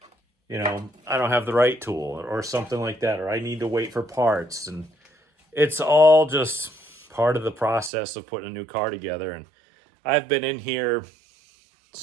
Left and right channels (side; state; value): left; drops out; at 7.9 s